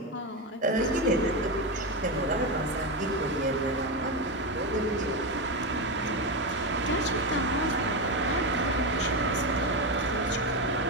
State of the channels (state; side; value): normal; both; correlation 0.12